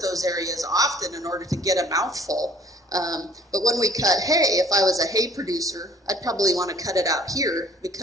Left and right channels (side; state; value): both; normal; correlation 0.55